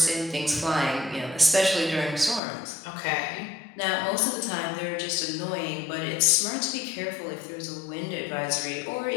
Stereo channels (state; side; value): drops out; right; at 2.4 s